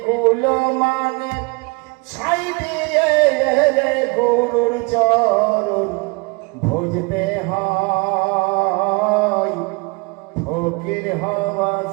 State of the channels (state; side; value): quieter; left; 28.2 dB